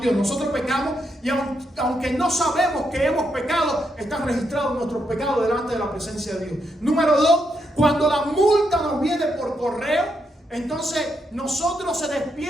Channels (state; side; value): normal; both; correlation 0.81